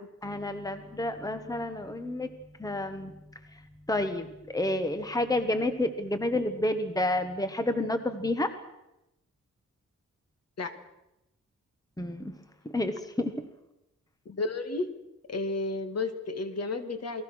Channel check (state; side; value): normal; both; correlation 0.55